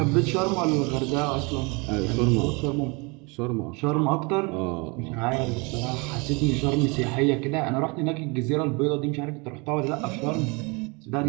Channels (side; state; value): left; quieter; 29.2 dB